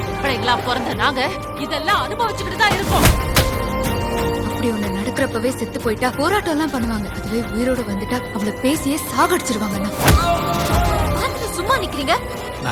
பிள்ளைங்களா பிறந்த நாங்க இதெல்லாம் அனுபவிச்சுக்கிட்டு தான் இருக்கோம். அப்படி ஒண்ணு நடக்கிறப்பவே செத்து போயிட்டா போராட்டம் எல்லாம் பண்ணுவாங்க. அதுவே உயிரோடு வந்துட்டா அவளை பேசியே சாகடிச்சிருவாங்க. சும்மா நிக்கிறீங்க?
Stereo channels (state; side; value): identical; both; correlation 1.00